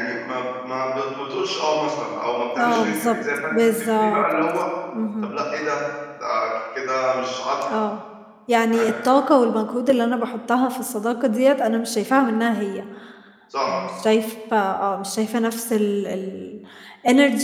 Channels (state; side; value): identical; both; correlation 1.00